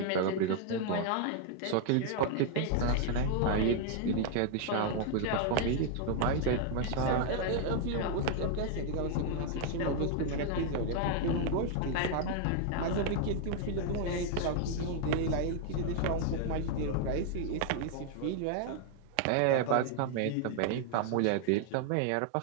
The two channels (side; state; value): both; different; correlation 0.00